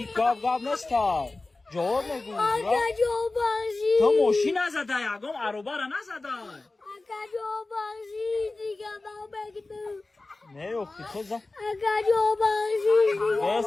گاب نستا جواب نگو اکا جان بخشیش تو موشی نزده یکم عروبه را نزده اکا جان بخشیش دیگه نبگدم نه آخی تو زن اکا جان بخشیش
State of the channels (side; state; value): right; quieter; 3.2 dB